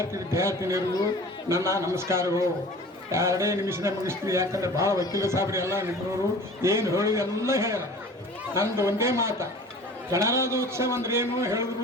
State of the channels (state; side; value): normal; both; correlation 0.42